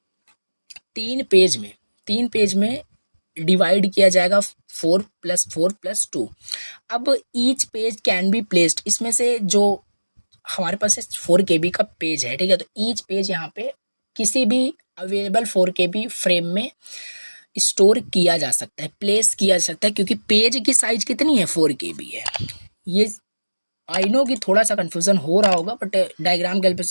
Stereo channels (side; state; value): both; inverted; correlation -1.00